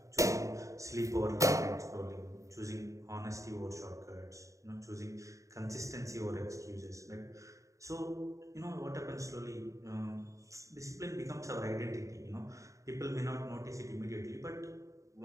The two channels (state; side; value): late; left; 0.15 ms